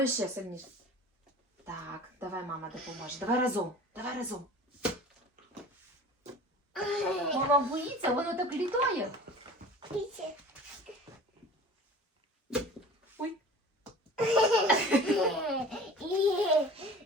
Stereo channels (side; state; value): both; normal; correlation 0.41